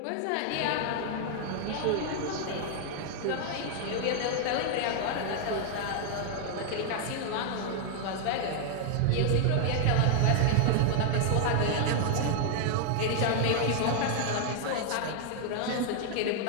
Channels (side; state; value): both; different; correlation 0.00